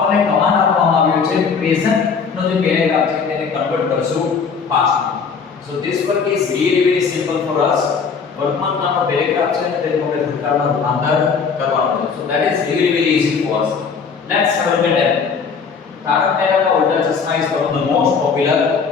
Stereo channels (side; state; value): right; quieter; 5.7 dB